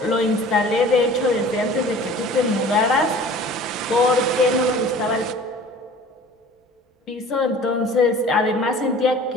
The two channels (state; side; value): normal; both; correlation 0.45